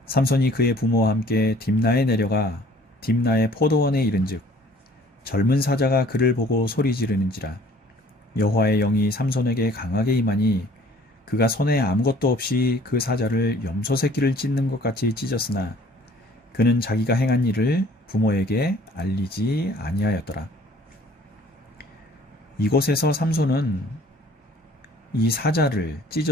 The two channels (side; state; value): both; normal; correlation 0.54